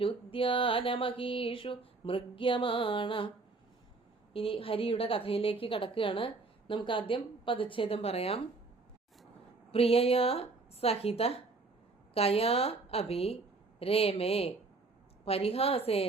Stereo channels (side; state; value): left; quieter; 3.7 dB